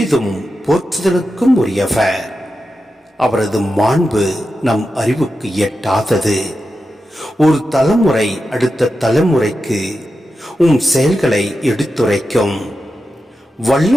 போற்றுதலுக்கும் உரியவர். அவரது மாண்பு நம் அறிவுக்கு எட்டாதது. ஒரு தலைமுறை அடுத்த தலைமுறைக்கு செயல்களை எடுத்துரைக்கும்.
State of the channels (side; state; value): both; normal; correlation 0.90